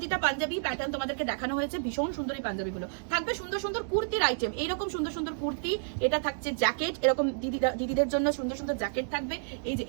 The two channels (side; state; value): left; silent; digital silence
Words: পাঞ্জাবি প্যাটার্ন তোমাদেরকে দেখানো হয়েছে, ভীষণ সুন্দর এই পাঞ্জাবিগুলো। থাকবে সুন্দর সুন্দর কুর্তির আইটেম, এইরকম সুন্দর সুন্দর কুর্তি। এটা থাকছে জ্যাকেট, এরকম দিদিদের জন্য সুন্দর সুন্দর জ্যাকেট থাকবে। এই যে